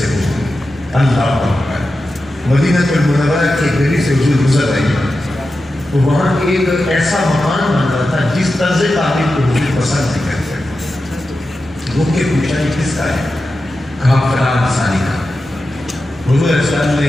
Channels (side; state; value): both; normal; correlation 0.91